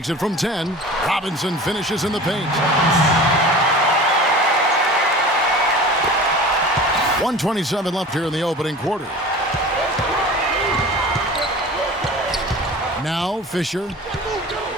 it from 10. Robinson finishes in the paint. 1:27 left here in the opening quarter. Now Fisher.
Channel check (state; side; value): normal; both; correlation 0.38